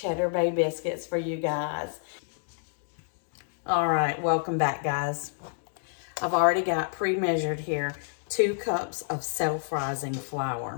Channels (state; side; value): silent; right; digital silence